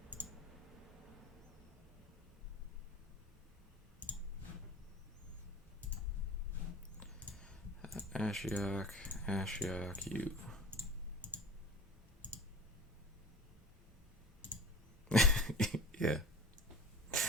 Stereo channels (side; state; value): both; normal; correlation 0.37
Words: Ashiok, Ashiok, you. Yeah.